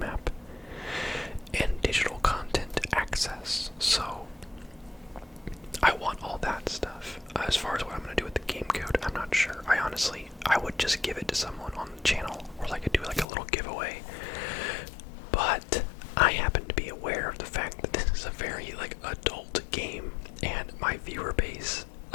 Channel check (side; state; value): right; drops out; at 13.2 s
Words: and digital content access. So I want all that stuff. As far as what I'm going to do with the game code, I'm not sure. I would just give it to someone on the channel, or do like a little giveaway. But I happen to be aware of the fact that this is a very adult game, and my viewer base,